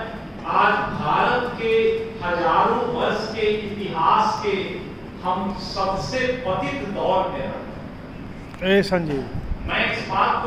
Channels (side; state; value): both; identical; correlation 1.00